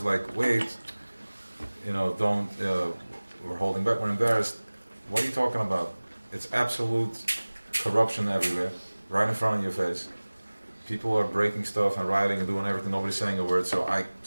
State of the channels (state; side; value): inverted; both; correlation -1.00